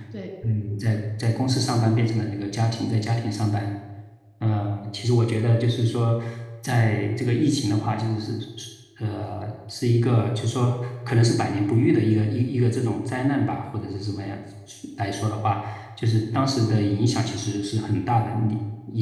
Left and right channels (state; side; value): identical; both; correlation 1.00